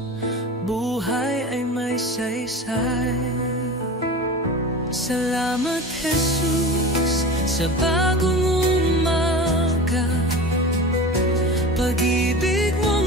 buhay ay may saysay. Salamat, Jesus, sa bagong umaga. Pag-ibig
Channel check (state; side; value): normal; both; correlation 0.33